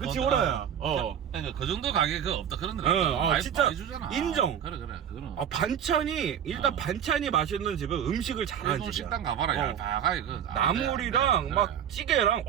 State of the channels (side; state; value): left; quieter; 9.1 dB